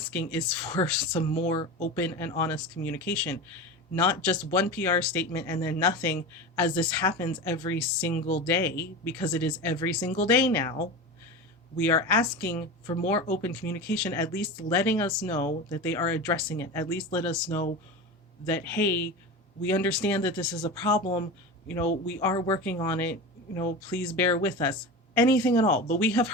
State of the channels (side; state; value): both; normal; correlation 0.27